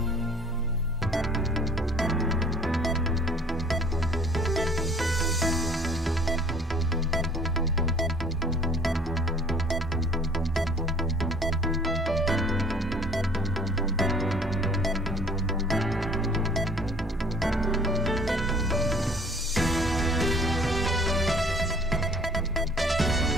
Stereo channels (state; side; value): normal; both; correlation 0.53